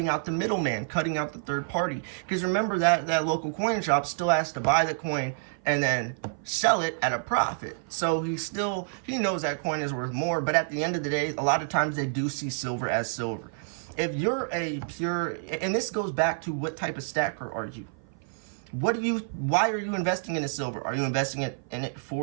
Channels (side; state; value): left; silent; 55 dB below the other